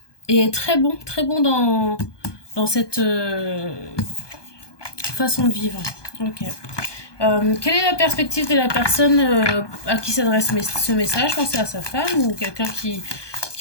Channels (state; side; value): late; right; 1.2 ms